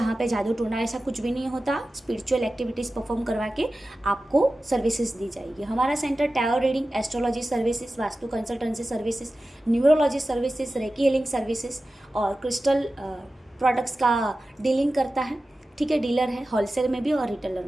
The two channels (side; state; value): both; normal; correlation 0.95